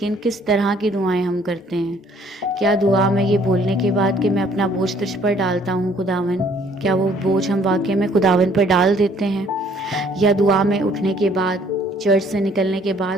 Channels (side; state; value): both; normal; correlation 0.60